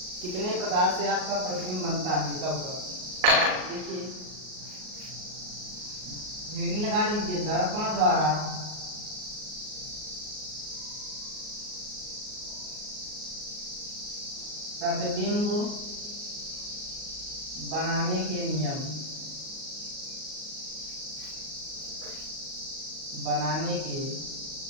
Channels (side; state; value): left; late; 38 ms